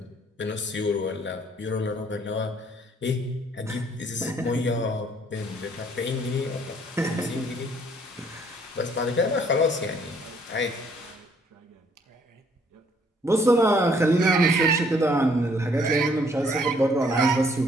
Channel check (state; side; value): normal; both; correlation 0.63